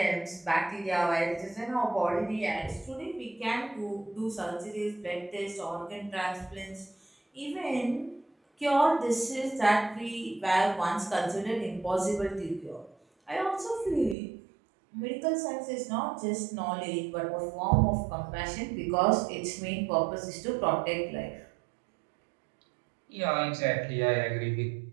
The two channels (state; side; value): drops out; left; at 14.2 s